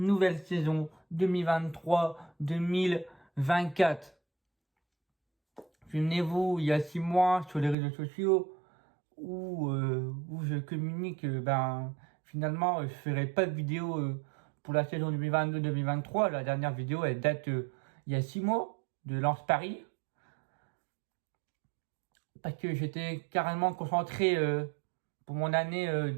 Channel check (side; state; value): left; drops out; at 7.8 s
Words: saison 2023-2024. Souvenez-vous, il y a 6 mois sur les réseaux sociaux où je communique, finalement, je ferai pas de vidéo pour la saison 2022-2023. La dernière vidéo, elle date il y a 6 mois de Lance Paris. Parce que j'étais carrément concentré pour mon année